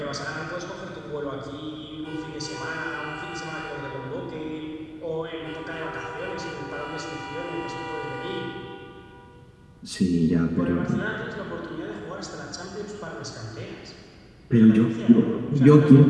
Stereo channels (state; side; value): identical; both; correlation 1.00